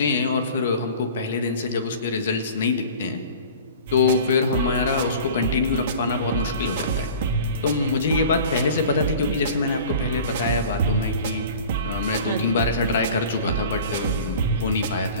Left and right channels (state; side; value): inverted; both; correlation -0.42